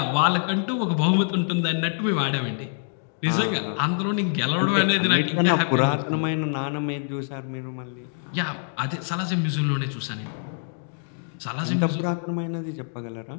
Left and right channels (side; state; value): right; silent; digital silence